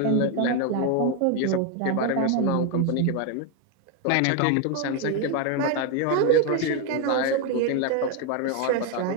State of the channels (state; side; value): different; both; correlation 0.01